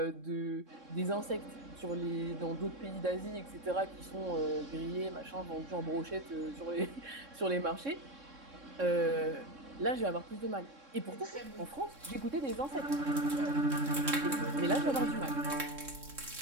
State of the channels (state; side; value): late; left; 3.6 ms